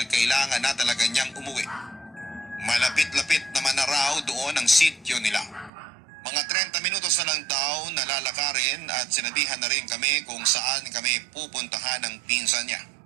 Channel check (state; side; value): drops out; left; at 5.7 s